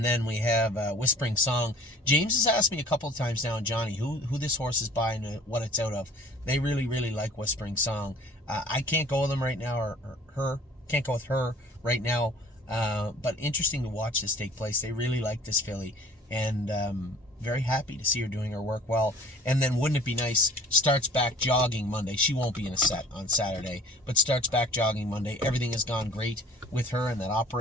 then we have Whispering Song. James has asked me a couple of times now, Johnny, who this horse is by and what it's out of. They really, really like Whispering Song. I can't go with him right now, or her. Can't go with her right now. But interesting to watch this take place. They really like this filly. And very happy to see her doing her work well. And then wouldn't it be nice, starts back jogging Monday. She won't be in a set on Saturday, but starts back jogging Monday. Everything has gone great with her and that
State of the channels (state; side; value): normal; both; correlation 0.48